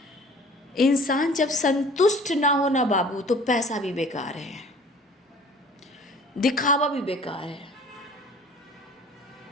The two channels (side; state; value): both; normal; correlation 0.48